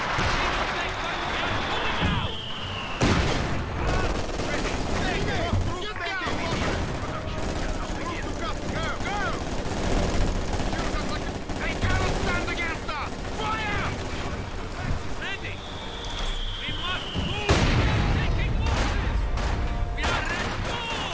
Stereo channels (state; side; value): identical; both; correlation 1.00